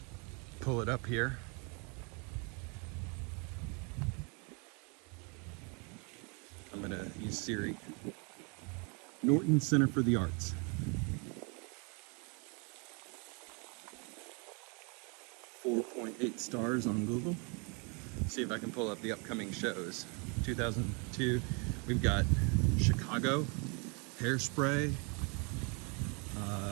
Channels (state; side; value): quieter; left; 33.4 dB